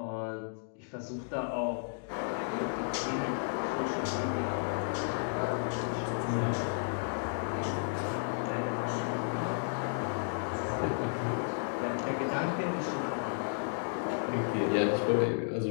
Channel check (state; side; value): silent; right; digital silence